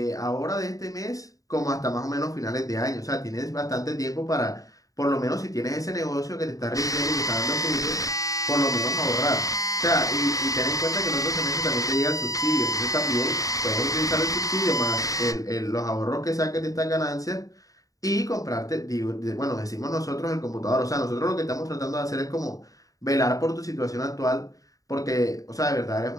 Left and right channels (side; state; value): right; late; 0.17 ms